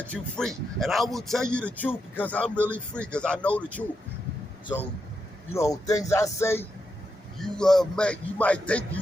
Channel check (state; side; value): normal; both; correlation 0.84